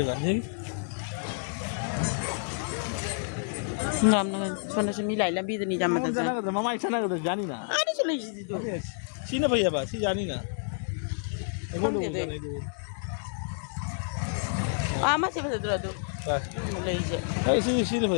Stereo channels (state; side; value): silent; right; digital silence